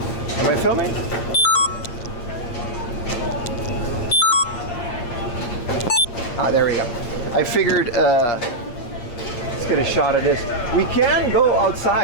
I filming? Ah, there we go. I figured, let's get a shot of this. We can go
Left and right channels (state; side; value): late; right; 8.4 ms